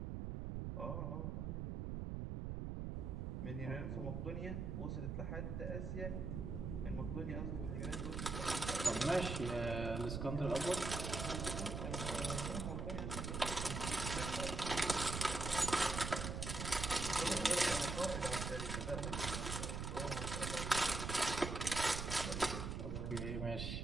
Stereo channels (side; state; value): right; noise; rumble, 3 dB below the sound